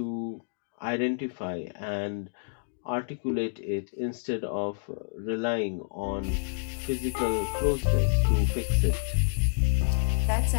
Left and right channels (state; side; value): silent; right; digital silence